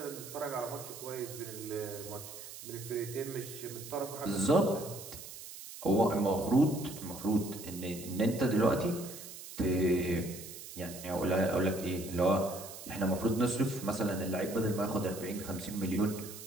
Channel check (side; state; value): right; noise; hiss, 13 dB below the sound